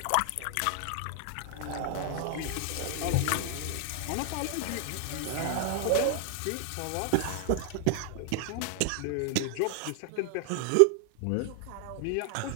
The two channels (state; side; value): different; both; correlation 0.00